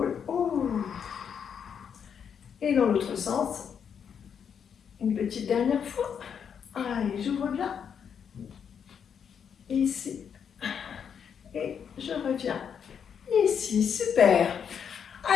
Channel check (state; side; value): quieter; right; 7.5 dB